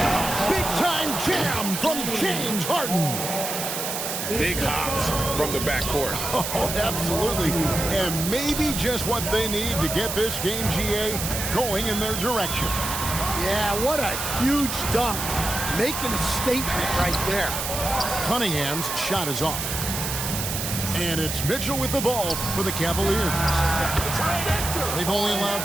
Big time jam from James Harden. Big hops from the backcourt. Oh, absolutely. And maybe just what they need to get this game, GA, going in their direction. Yeah, what a huge dunk. Making a statement right there. Cunningham's shot is off. And it's Mitchell with the ball for the Cavaliers. They've only allowed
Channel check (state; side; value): noise; right; hiss, 4 dB below the sound